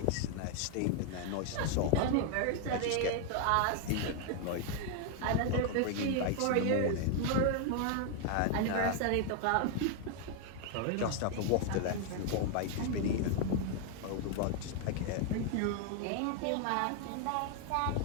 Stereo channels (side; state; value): both; different; correlation 0.00